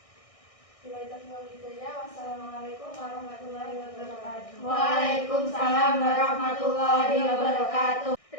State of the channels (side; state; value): right; late; 1.6 ms